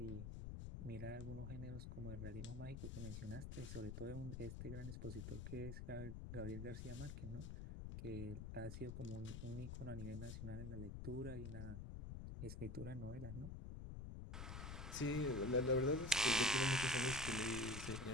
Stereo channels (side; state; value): left; noise; rumble, 6 dB below the sound